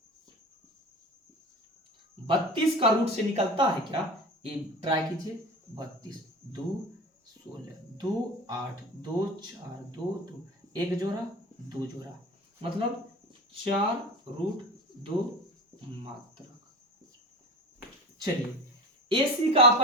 32 का रूट से निकलता है क्या? ये ट्राई कीजिए। 32 2 16 2 8 2 4 2 2 1 जोड़ा 2 जोड़ा, मतलब 4√2 मात्रक। चलिए AC का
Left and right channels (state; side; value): normal; both; correlation 0.32